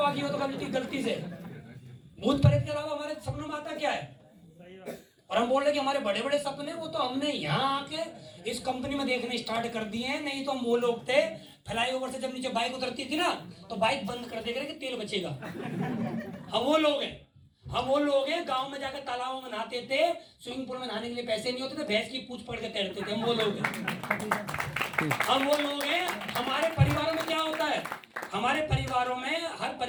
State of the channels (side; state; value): both; identical; correlation 1.00